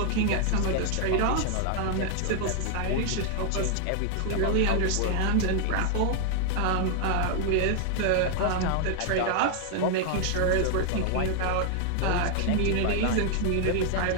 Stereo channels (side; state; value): both; different; correlation 0.00